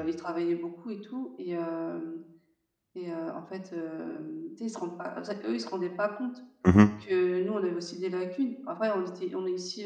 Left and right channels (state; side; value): identical; both; correlation 1.00